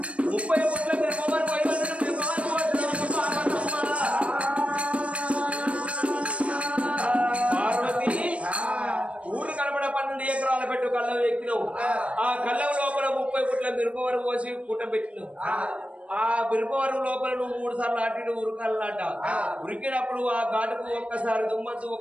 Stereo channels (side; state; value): left; late; 0.063 ms